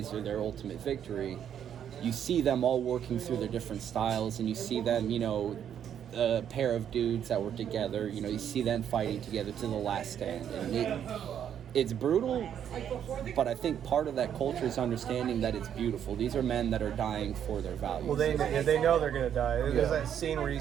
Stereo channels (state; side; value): quieter; left; 9.2 dB